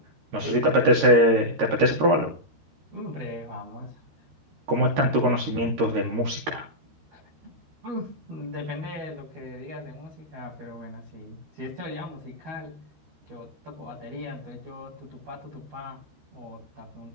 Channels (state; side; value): late; left; 13 ms